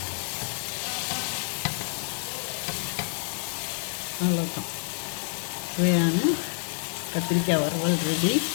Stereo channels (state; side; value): silent; right; 57 dB below the other